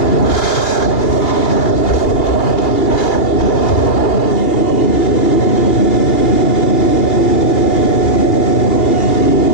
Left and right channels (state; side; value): late; right; 2.8 ms